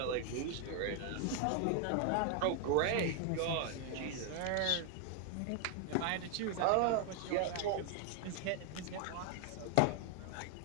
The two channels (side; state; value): both; different; correlation 0.00